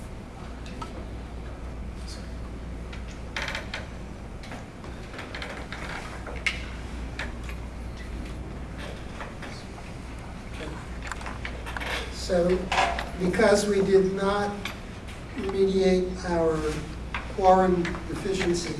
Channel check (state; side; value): identical; both; correlation 1.00